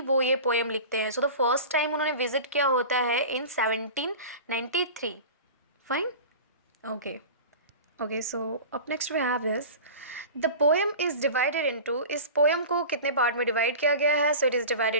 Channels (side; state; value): both; inverted; correlation -0.34